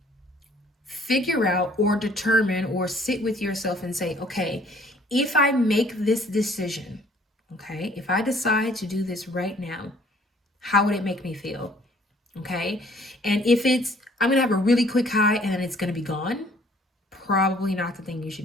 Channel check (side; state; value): both; normal; correlation 0.58